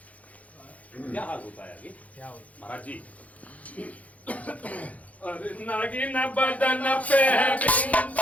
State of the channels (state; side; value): late; right; 0.069 ms